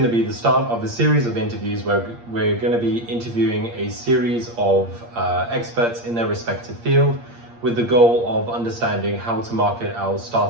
to be the start of a series of interviews where we're going to be interviewing a series of experts in their respective field with the goal of understanding how to market our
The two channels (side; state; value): left; late; 8.6 ms